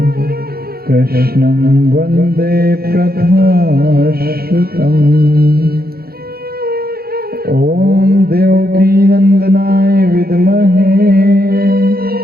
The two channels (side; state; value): left; late; 0.44 ms